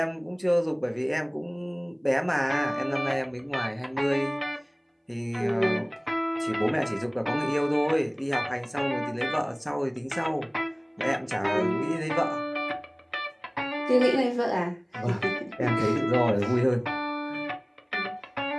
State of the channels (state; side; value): identical; both; correlation 1.00